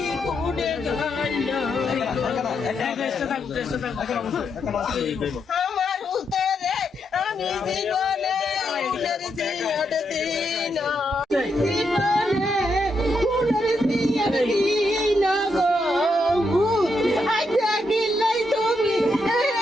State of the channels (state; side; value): normal; both; correlation 0.81